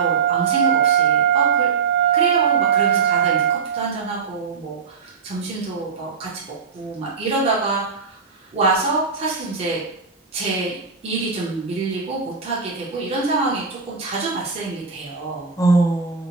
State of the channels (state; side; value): quieter; left; 5.6 dB